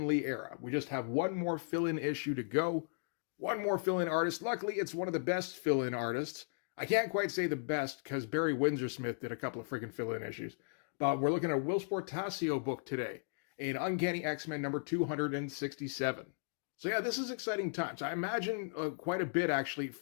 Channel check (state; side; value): silent; right; digital silence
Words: Lee era. We just have one more fill-in issue to go. One more fill-in artist. Luckily, it's one of the best fill-in artists. I can't quite say the best, because Barry Windsor-Smith did a couple of freaking fill-in issues. But we're looking at a Whilce Portacio book today, in Uncanny X-Men number 267. So yeah, this is exciting times. I imagine quite a bit, actually,